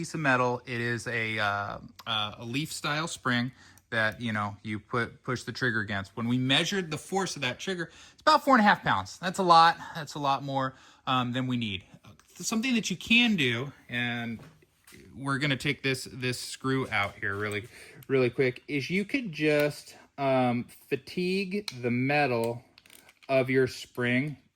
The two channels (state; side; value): identical; both; correlation 1.00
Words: of metal. It is a leaf style spring that you push the trigger against. When we measured the force of that trigger, it's about 4.5 pounds. That's a lot. That's a lot more than we need. Something that you can do, and we're going to take this screw out here really quick, is you could just fatigue the metal of your spring